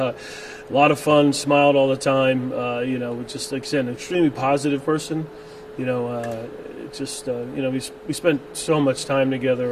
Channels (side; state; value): both; identical; correlation 1.00